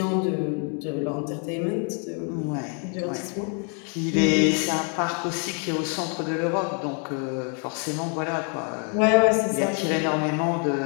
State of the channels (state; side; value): quieter; right; 39.5 dB